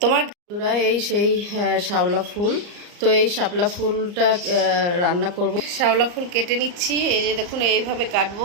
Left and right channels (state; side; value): late; left; 34 ms